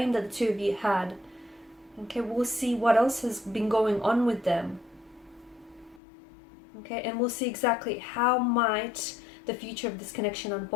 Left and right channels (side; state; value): right; drops out; at 6.0 s